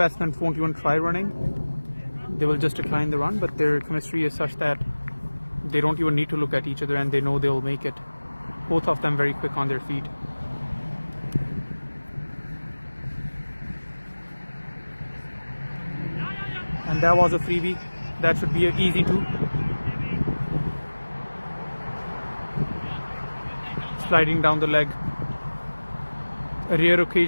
won't even try running. They will just decline the run, but their chemistry is such that they don't even need to look at each other and they know they'll make it. Both of them very quick on their feet. And that was a freebie. That should be an easy 2. Sliding down the leg. A rare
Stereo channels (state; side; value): inverted; both; correlation -1.00